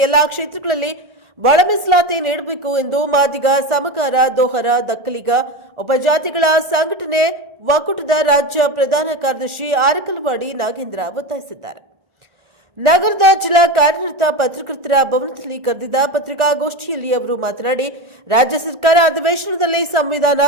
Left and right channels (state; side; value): late; left; 1.5 ms